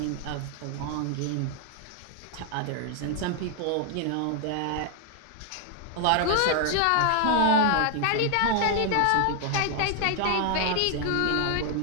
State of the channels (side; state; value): both; different; correlation 0.00